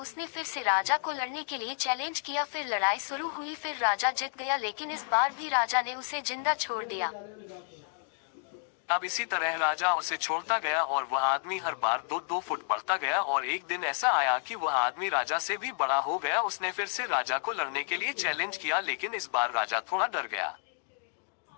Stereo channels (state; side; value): silent; right; digital silence